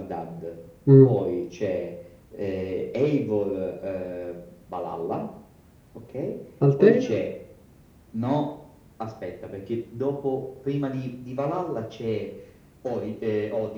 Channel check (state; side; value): identical; both; correlation 1.00